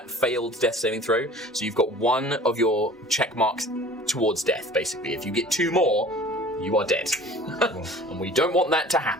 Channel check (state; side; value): normal; both; correlation 0.45